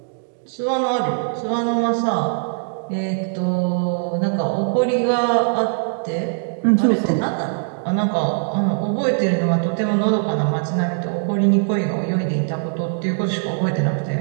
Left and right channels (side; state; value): left; silent; digital silence